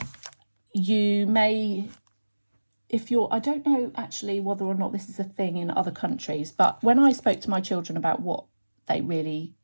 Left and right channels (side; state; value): both; inverted; correlation -1.00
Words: you may, if you're, I don't know actually whether or not this is a thing in other countries, but when I spoke to my children about what they really